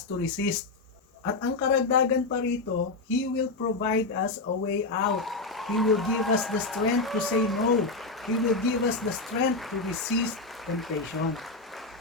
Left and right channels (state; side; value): quieter; right; 3.5 dB